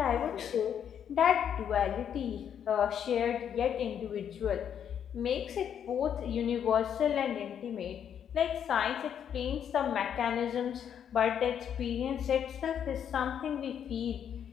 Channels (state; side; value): quieter; right; 8.7 dB